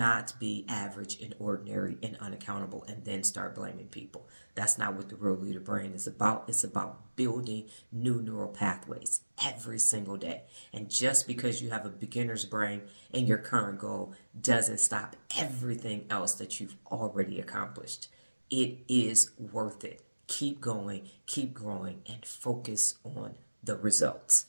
be average and ordinary and unaccountable and then start blaming people. That's not what the real leader brain is about. It's about building new neural pathways every single day. And just because you have a beginner's brain in your current goal doesn't stop everything else that you've already accomplished. It is worth it. Keep going, keep growing, and focus on the results.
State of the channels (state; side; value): inverted; both; correlation -1.00